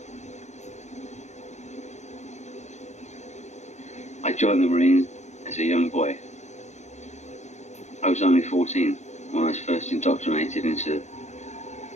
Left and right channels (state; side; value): late; right; 0.33 ms